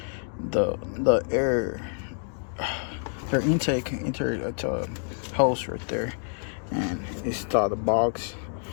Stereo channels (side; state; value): right; silent; 60 dB below the other